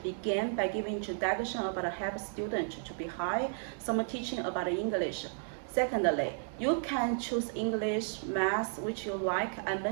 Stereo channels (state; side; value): silent; left; 56 dB below the other